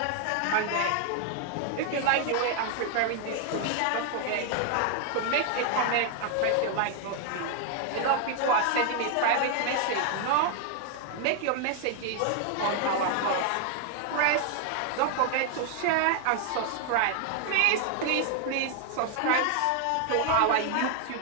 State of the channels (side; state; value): both; different; correlation 0.00